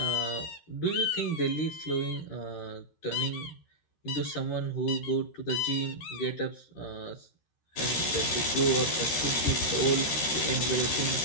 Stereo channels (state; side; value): late; right; 13 ms